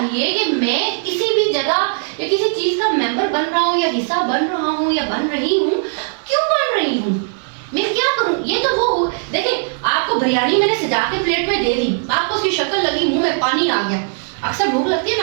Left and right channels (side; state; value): left; silent; 60 dB below the other